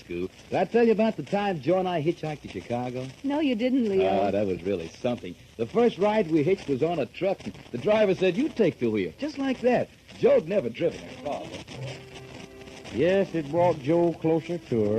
did I tell you about the time Joe and I hitchhiked to Chicago? No, you didn't, Leo. That was really something. The first ride we hitched was on a truck, and the driver said, "You take the wheel." Just like that. Joe'd never driven a car before. Yes, it brought Joe closer to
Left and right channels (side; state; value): both; identical; correlation 1.00